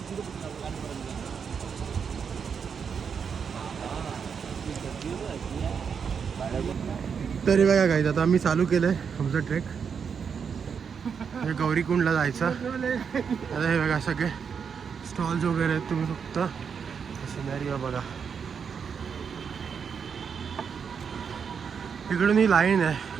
तरी बघा काय आता आम्ही चालू केलंय आमचं ट्रेक. हे गौरीकुंडला जायचं. आता हे बघा सगळे स्टॉल्स वगैरे आहेत. तुम्ही फक्त सिनॅरिओ बघा. इकडून ही लाईन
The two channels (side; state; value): left; quieter; 6.6 dB